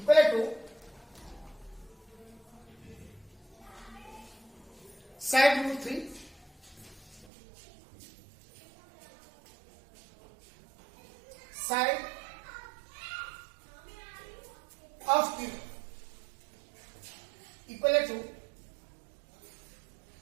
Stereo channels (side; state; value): left; drops out; at 7.3 s